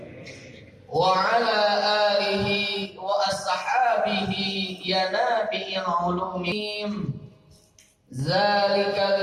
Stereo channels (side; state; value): both; identical; correlation 1.00